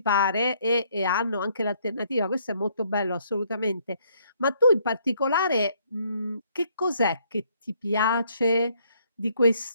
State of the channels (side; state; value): both; inverted; correlation -0.67